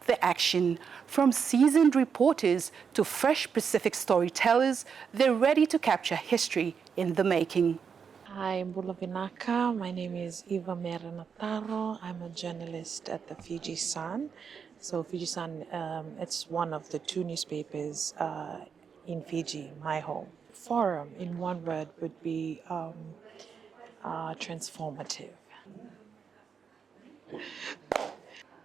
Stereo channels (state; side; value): quieter; left; 6.5 dB